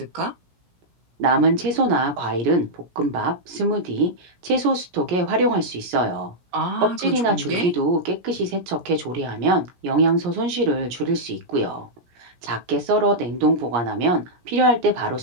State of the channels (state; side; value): late; left; 17 ms